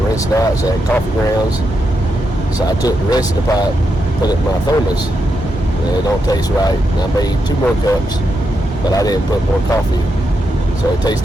rinse it out, so I had coffee grounds. So I took the rest of the pot, put it in my thermos, and it don't taste right. And I made 2 more cups, but I didn't put more coffee, so it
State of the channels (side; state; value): both; normal; correlation 0.84